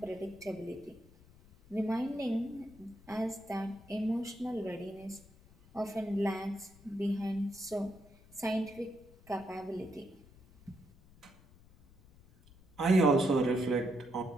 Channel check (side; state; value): left; noise; rumble, 24 dB below the sound